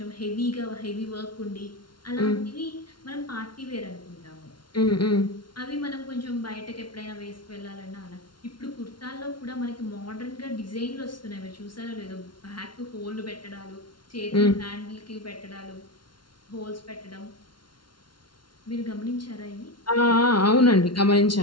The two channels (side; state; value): right; late; 0.72 ms